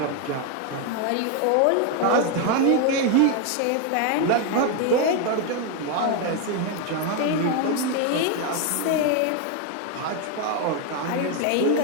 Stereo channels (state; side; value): different; both; correlation 0.01